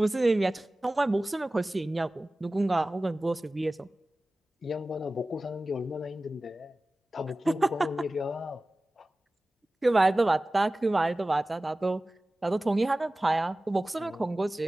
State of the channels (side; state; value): both; normal; correlation 0.97